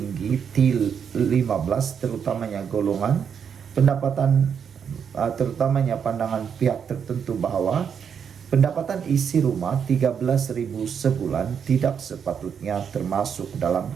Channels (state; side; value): quieter; left; 7.3 dB